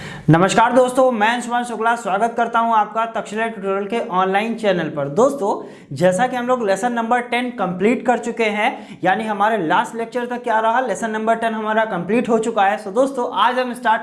नमस्कार दोस्तों, मैं अंशुमान शुक्ला स्वागत करता हूं आपका तक्षशिला ट्यूटोरियल के ऑनलाइन चैनल पर। दोस्तों, जैसा कि हम लोग लेसन नंबर 10 कंप्लीट कर चुके हैं, यानी हमारे लास्ट लेक्चर तक क्या रहा, लेसन नंबर 10 हमारा कंप्लीट हो चुका है। दोस्तों, आज हम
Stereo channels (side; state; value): both; identical; correlation 1.00